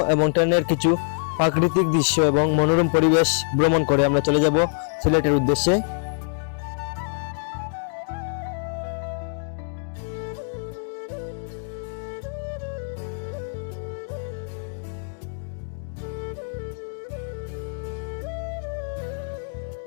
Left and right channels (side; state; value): right; silent; digital silence